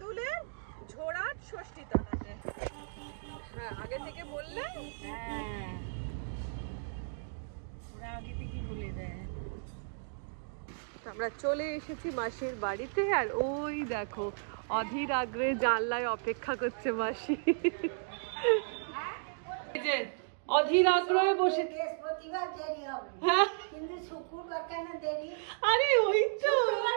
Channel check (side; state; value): left; silent; digital silence